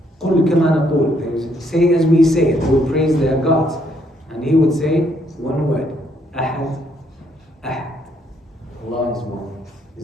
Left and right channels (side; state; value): both; normal; correlation 0.71